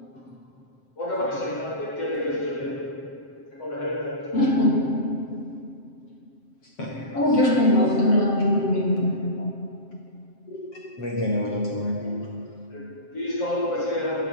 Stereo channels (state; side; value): late; right; 7.6 ms